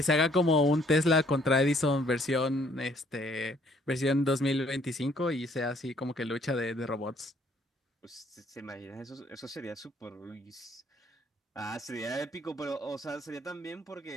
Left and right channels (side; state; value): both; normal; correlation 0.64